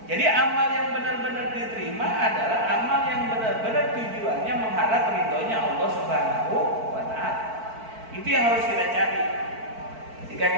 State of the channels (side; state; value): left; late; 4.5 ms